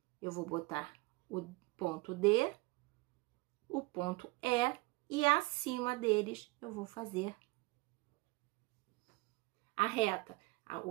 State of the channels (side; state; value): left; quieter; 23.8 dB